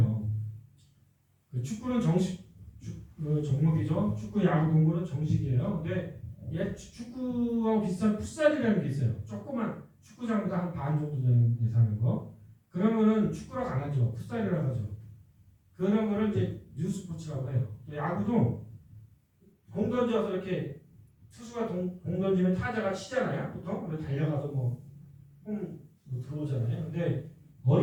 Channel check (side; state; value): both; identical; correlation 1.00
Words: 그 축구는 정식 종목이죠. 축구, 야구, 농구는 정식이에요. 근데 얘 축구하고 비슷한 풋살이라는 게 있어요. 조그만 축구장보다 한 반 정도 되는 예산인 거. 그러면은 축구라고 안 하죠. 풋살이라고 하죠. 그런 거를 이제 뉴스포츠라고 해요. 야구도 공 던져서 이렇게 투수가 공 던지면 타자가 치잖아요. 보통 달려가서 홈 들어오잖아요. 근데